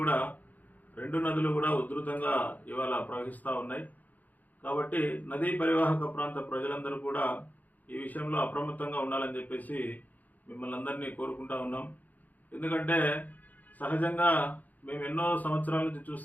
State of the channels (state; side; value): late; right; 0.081 ms